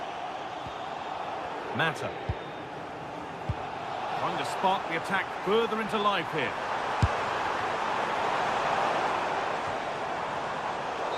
Mata. Trying to spark the attack further into life here.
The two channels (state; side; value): identical; both; correlation 1.00